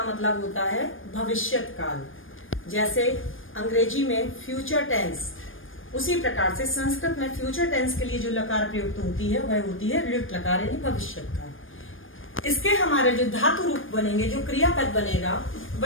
मतलब होता है भविष्यत काल। जैसे अंग्रेजी में फ्यूचर टेंस, उसी प्रकार से संस्कृत में फ्यूचर टेंस के लिए जो लकार प्रयुक्त होती है वह होती है लृट लकार यानी भविष्यत काल। इसके हमारे जो धातु रूप बनेंगे, जो क्रियापद बनेगा,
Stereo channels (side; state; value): right; late; 0.59 ms